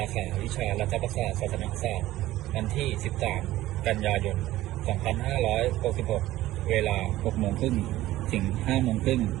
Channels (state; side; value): quieter; left; 15.8 dB